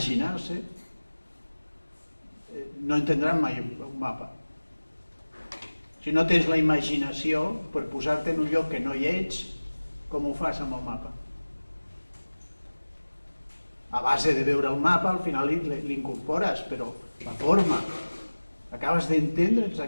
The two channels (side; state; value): both; inverted; correlation -1.00